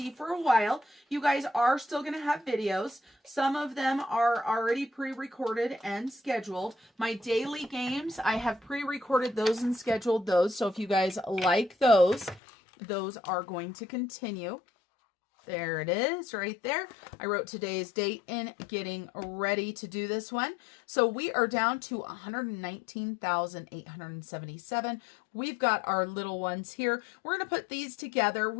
for a while. You guys are still going to have videos. Some of them are already pre-recorded and scheduled. My daily games, I have pre-recorded those and scheduled those. So if you guys like those are going to continue. There it is right there. I wrote today's date in getting ready to do this one. So we are down to 119,877. We've got our little ones here. We're going to put these together.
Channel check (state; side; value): drops out; right; at 12.4 s